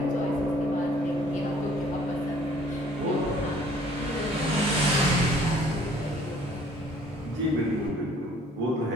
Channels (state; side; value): normal; both; correlation 0.57